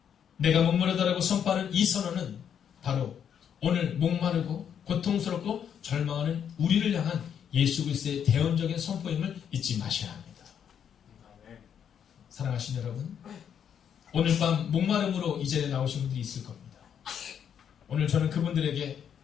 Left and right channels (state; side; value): quieter; right; 8.4 dB